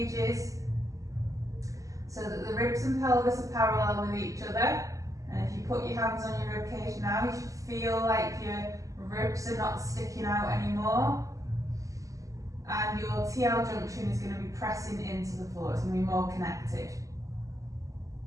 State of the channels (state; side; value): late; left; 0.16 ms